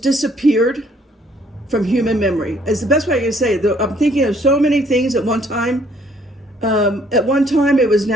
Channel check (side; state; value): both; normal; correlation 0.63